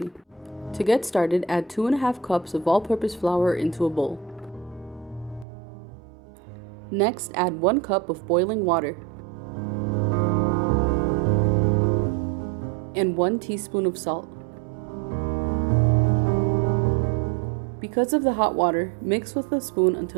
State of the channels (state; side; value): drops out; left; at 5.5 s